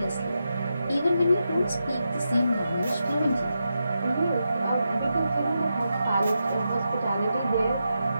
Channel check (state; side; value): inverted; both; correlation -0.87